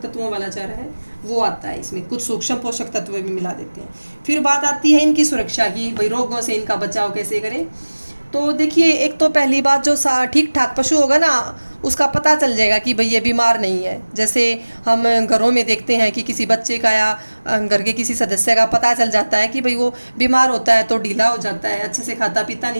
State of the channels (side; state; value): both; inverted; correlation -1.00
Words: तत्वों वाला चारा है, वो आता है। इसमें कुछ सूक्ष्म पोषक तत्व भी मिला देते हैं। फिर बात आती है इनकी सुरक्षा की, भाई रोगों से इनका बचाव कैसे करें। तो देखिए, एक तो पहली बात, जो ठीक ठाक पशु होगा ना, उसका पता चल जाएगा कि भाई ये बीमार नहीं है। जैसे हम घरों में देखते हैं कि किसी बच्चे का या घर के किसी सदस्य का पता चल जाता है कि भाई वो बीमार होता है तो ढीला हो जाता है, अच्छे से खाता पीता